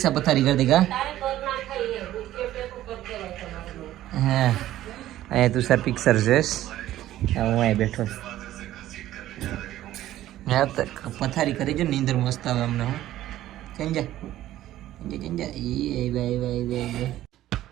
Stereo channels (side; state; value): left; quieter; 13.9 dB